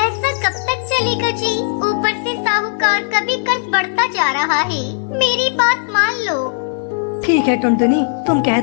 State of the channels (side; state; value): right; silent; digital silence